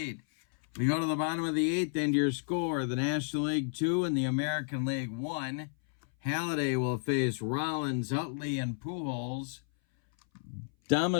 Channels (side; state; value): right; silent; 57 dB below the other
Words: We go to the bottom of the 8th, and your score, the National League 2 and the American League 1. Halladay will face Rollins, Utley, and Pujols.